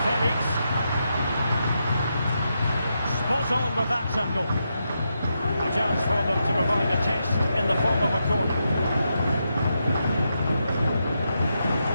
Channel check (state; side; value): inverted; both; correlation -0.84